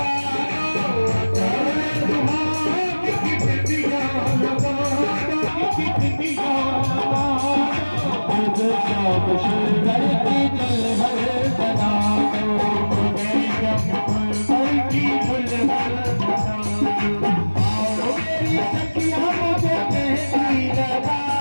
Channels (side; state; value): both; inverted; correlation -1.00